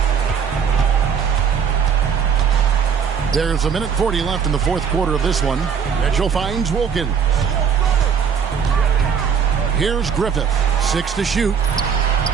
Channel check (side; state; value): left; quieter; 7.1 dB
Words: There's 1:40 left in the fourth quarter of this one. Mitchell finds Wilkins. Here's Griffith. 6 to shoot.